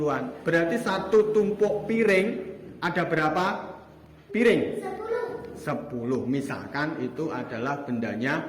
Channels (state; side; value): identical; both; correlation 1.00